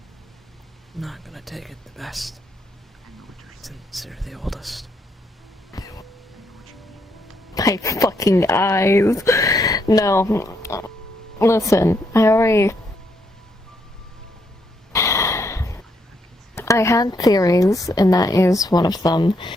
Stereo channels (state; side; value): normal; both; correlation 0.75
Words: not gonna take it the best. Since you're the oldest. My fucking eyes. No. Listen, I had theories, and that is one of them.